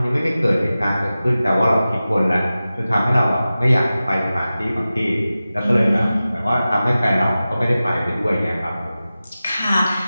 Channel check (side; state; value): both; inverted; correlation -0.95